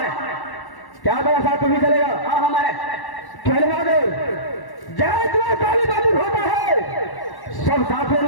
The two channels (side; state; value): right; late; 1.1 ms